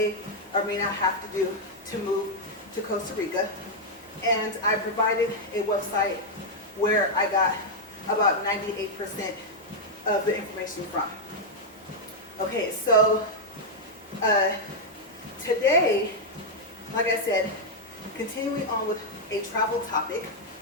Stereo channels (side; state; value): both; normal; correlation -0.02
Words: or may not have to do to move to Costa Rica. And I provided a website where I got about 98% of the information from. Okay, so today, like I said, continuing on with a travel topic,